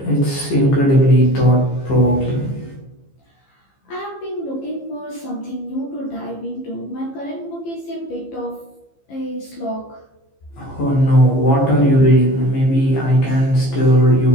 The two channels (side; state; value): right; late; 15 ms